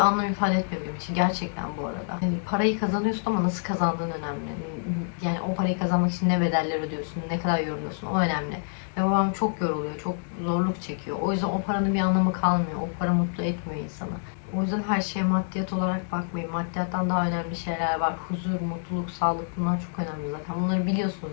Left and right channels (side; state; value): right; silent; digital silence